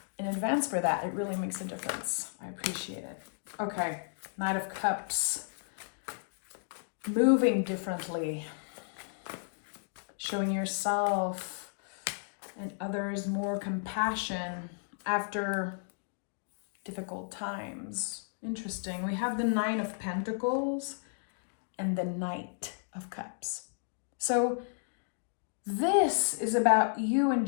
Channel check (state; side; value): silent; right; digital silence